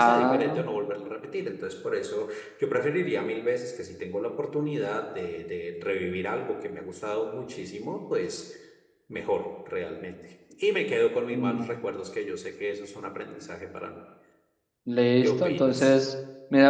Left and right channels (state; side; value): identical; both; correlation 1.00